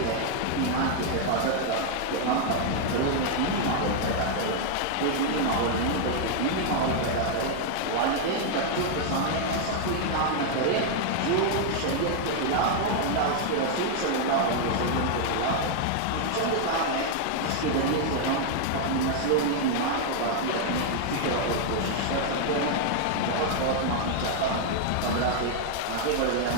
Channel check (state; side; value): different; both; correlation 0.00